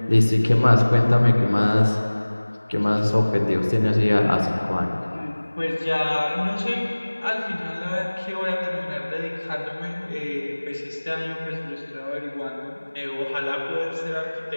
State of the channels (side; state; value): both; inverted; correlation -1.00